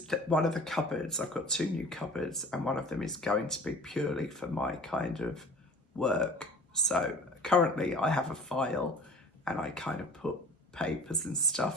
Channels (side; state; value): both; normal; correlation 0.44